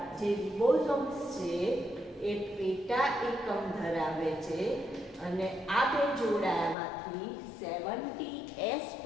જે રિબોઝોમ્સ છે એ પેટા એકમ ધરાવે છે અને આ બે જોડાયામાંથી 70S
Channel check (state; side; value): drops out; right; at 6.8 s